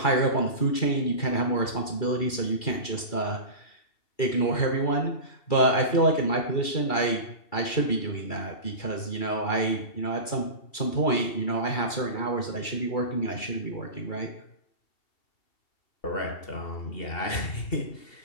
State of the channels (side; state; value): right; late; 2.3 ms